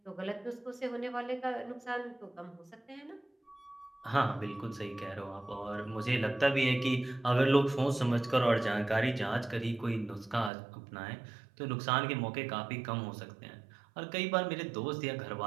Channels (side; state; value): left; drops out; at 10.5 s